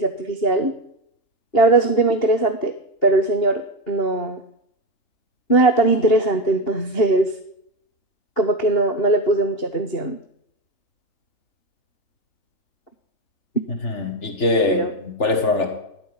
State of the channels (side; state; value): right; late; 3.4 ms